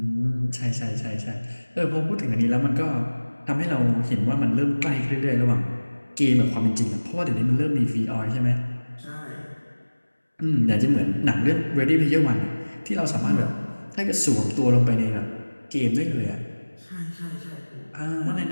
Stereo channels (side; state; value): both; inverted; correlation -1.00